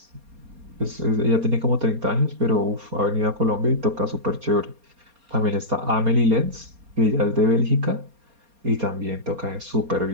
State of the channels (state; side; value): late; left; 4.3 ms